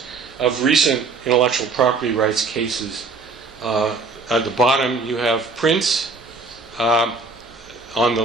of recent intellectual property rights cases. At the bottom, you have Prince. On the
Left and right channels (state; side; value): quieter; left; 4.1 dB